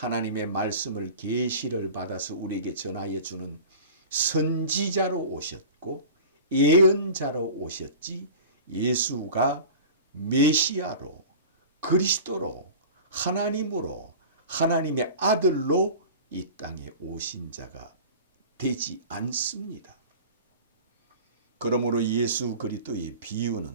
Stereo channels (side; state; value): both; inverted; correlation -0.38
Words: 말씀을 계시를 받아서 우리에게 전하여 주는 선지자로 오셨고 예언자로 오셨지 예수가 메시아로 그리스도로 하나님으로 하나님의 아들로 이 땅에 오신 자가 되지 않습니다. 그러므로 예수 그리스도의